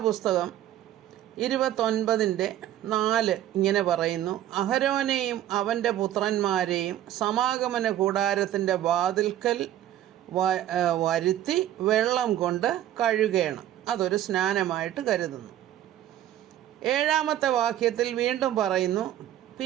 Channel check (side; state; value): left; quieter; 12.4 dB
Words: പുസ്തകം 29:4 ഇങ്ങനെ പറയുന്നു: അഹരോനെയും അവൻ്റെ പുത്രന്മാരെയും സമാഗമന കൂടാരത്തിൻ്റെ വാതിൽക്കൽ വരുത്തി വെള്ളം കൊണ്ട് കഴുകണം. അതൊരു സ്നാനമായിട്ട് കരുതുന്നു. 7-ാമത്തെ വാക്യത്തിൽ വീണ്ടും പറയുന്നു: